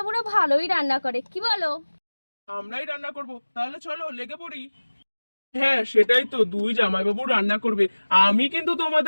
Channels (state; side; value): inverted; both; correlation -1.00